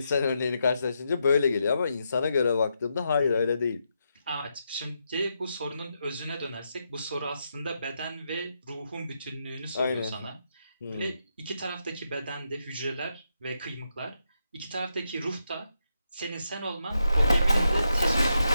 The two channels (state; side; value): inverted; both; correlation -0.83